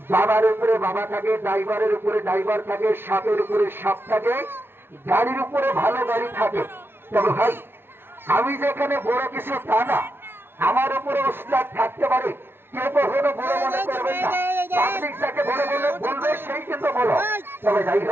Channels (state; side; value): late; left; 0.11 ms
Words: বাবার উপরে বাবা থাকে, ড্রাইভারের উপরে ড্রাইভার থাকে, সাপের উপরে সাপ থাকে, গাড়ির উপরে ভালো গাড়ি থাকে। তবে ভাই আমি যেখানে বড় কিছু তা না, আমার উপরে ওস্তাদ থাকতে পারে, কেউ কখনো বড় মনে করবেন না। পাবলিক যাকে বড় বলে বলবে সেই কিন্তু বড়। তবে যাই